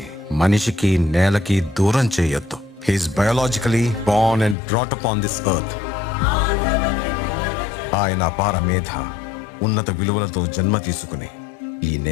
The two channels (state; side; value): drops out; right; at 4.5 s